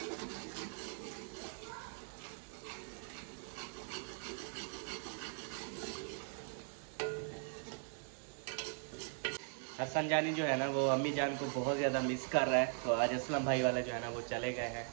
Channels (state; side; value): silent; left; 51 dB below the other